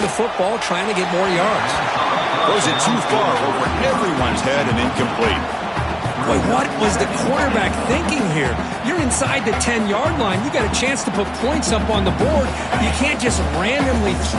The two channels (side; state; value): both; identical; correlation 1.00